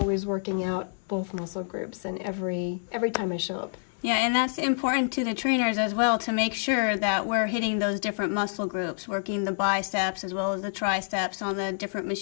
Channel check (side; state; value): right; silent; digital silence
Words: working out both muscle groups and every time I show up. Yeah, and that's important to the trainers as well, to make sure that we're hitting those different muscle groups, working the biceps as well as the triceps on the different